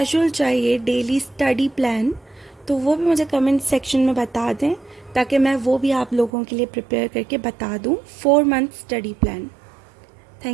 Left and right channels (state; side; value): drops out; left; at 6.3 s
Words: चाहिए, डेली स्टडी प्लान, तो वो भी मुझे कमेंट सेक्शन में बता दें, ताकि मैं वो भी आप लोगों के लिए प्रिपेयर करके बता दूं 4 month study plan.